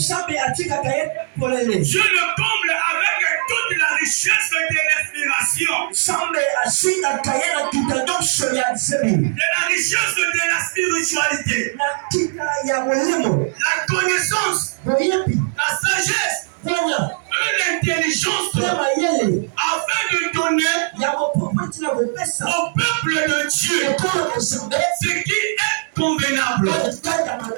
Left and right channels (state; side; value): silent; left; digital silence